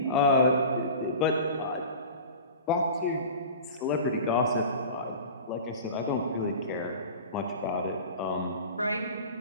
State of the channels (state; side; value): inverted; both; correlation -0.36